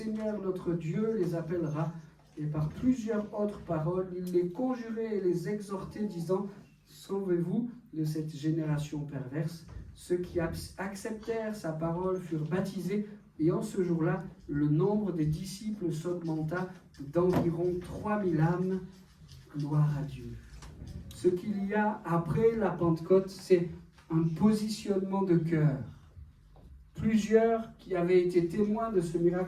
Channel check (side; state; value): both; identical; correlation 1.00